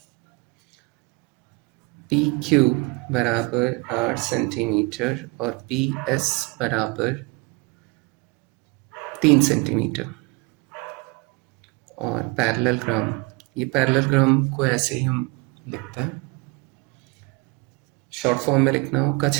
पी क्यू बराबर 8 सेंटीमीटर और पी एस बराबर 3 सेंटीमीटर और पैरेलल ग्राम, ये पैरेलल ग्राम को ऐसे ही हम लिखते हैं, शॉर्ट फॉर्म में लिखना हो का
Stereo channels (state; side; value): quieter; left; 26.7 dB